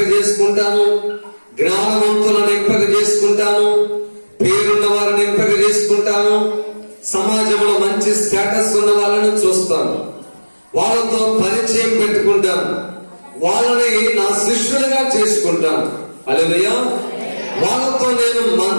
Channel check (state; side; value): inverted; both; correlation -1.00